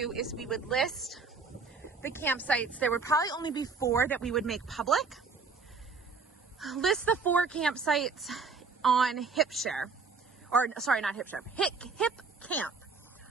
is we would list the campsites. There would probably only be 4 that we would make public. List the 4 campsites on HipShare, or sorry, not HipShare, Hip Camp.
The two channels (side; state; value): left; quieter; 4.7 dB